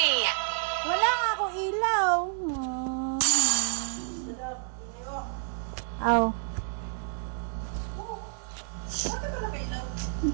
Wala nga ako ilaw. Aw.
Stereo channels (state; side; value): silent; left; digital silence